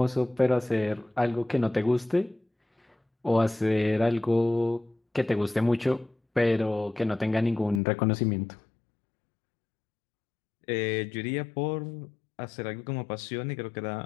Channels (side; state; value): right; drops out; at 7.8 s